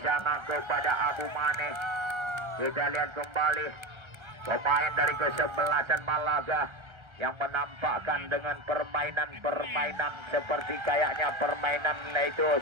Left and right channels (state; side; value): late; left; 1.3 ms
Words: kepada Abu Mane. Kita lihat kembali pemain dari kesebelasan Malaga yang menampakkan dengan permainan seperti kayaknya permainan yaitu